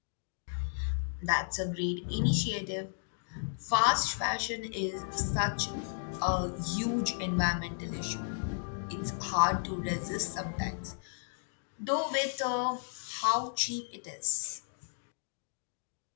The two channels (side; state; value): right; silent; digital silence